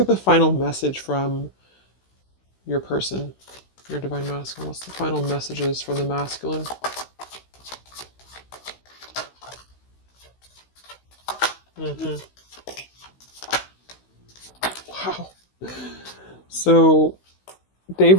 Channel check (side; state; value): right; late; 16 ms